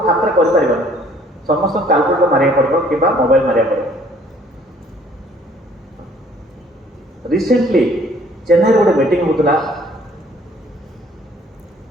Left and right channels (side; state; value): both; normal; correlation 0.58